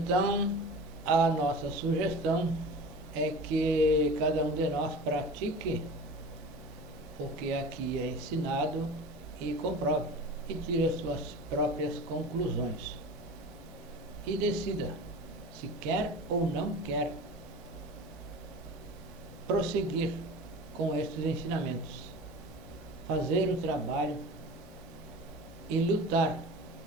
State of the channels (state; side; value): normal; both; correlation 0.36